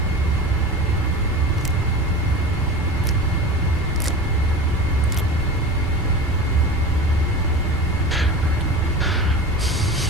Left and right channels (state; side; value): normal; both; correlation 0.32